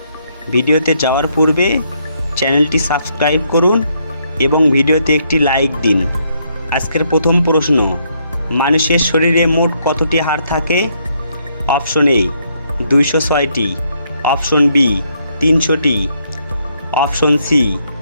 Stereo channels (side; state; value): both; inverted; correlation -0.73